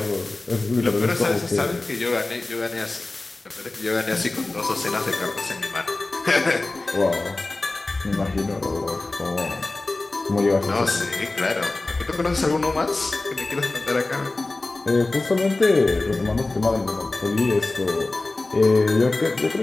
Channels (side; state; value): right; quieter; 3.1 dB